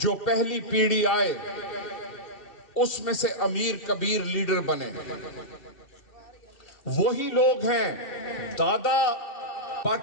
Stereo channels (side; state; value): right; late; 2.6 ms